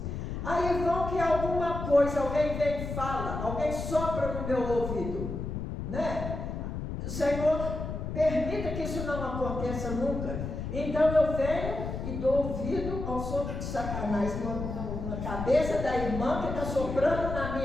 Aí vão que alguma coisa, alguém vem e fala, alguém sopra no meu ouvido, né? O Senhor permita que isso não aconteça nunca. Então eu venho e dou ouvido ao sopro de Satanás na cabeça da irmã que está soprando na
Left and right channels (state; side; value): noise; left; rumble, 5 dB below the sound